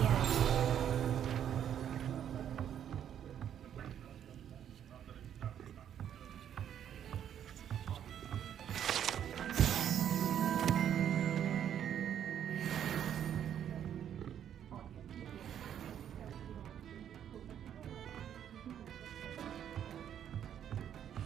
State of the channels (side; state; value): left; quieter; 9.6 dB